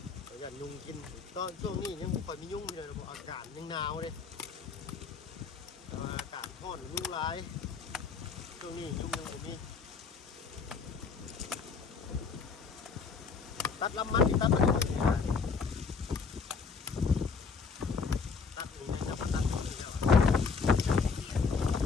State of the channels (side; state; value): right; quieter; 5.2 dB